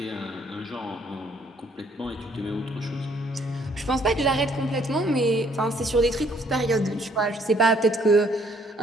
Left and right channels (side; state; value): both; normal; correlation 0.64